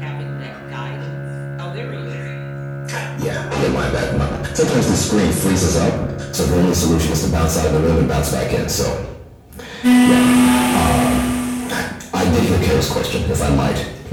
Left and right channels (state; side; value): identical; both; correlation 1.00